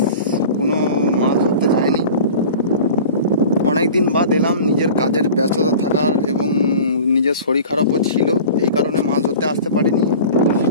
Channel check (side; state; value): both; inverted; correlation -0.39